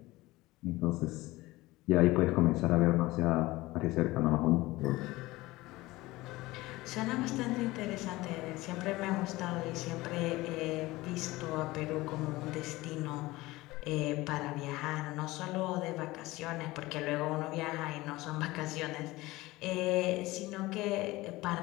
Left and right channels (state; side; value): quieter; right; 19.5 dB